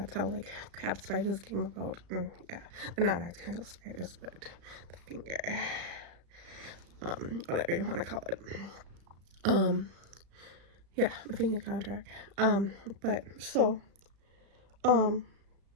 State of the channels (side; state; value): left; late; 35 ms